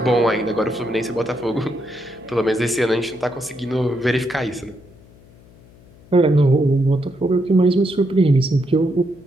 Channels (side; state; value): left; noise; hum, 25 dB below the sound